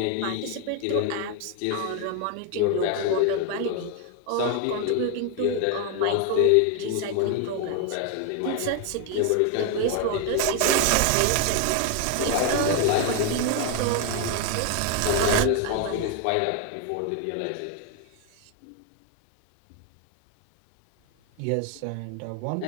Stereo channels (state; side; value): different; both; correlation 0.01